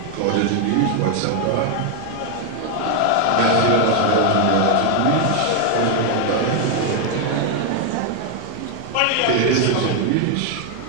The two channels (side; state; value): both; different; correlation 0.01